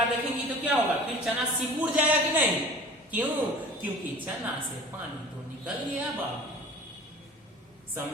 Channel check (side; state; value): both; normal; correlation 0.43